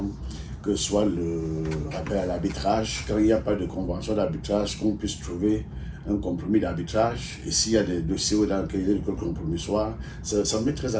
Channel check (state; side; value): identical; both; correlation 1.00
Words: que ce soit le rappel à l'arbitrage. Quand il n'y a pas de convention d'arbitrage, qu'on puisse trouver un compromis d'arbitrage. Et s'il y a des dossiers dans lesquels il y a le compromis soit, ça me met très